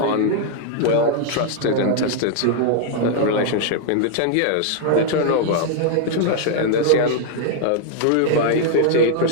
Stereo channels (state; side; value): different; both; correlation 0.00